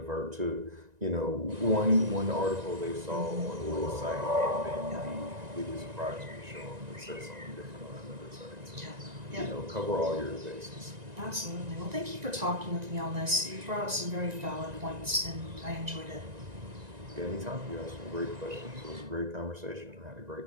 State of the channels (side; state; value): left; late; 1.9 ms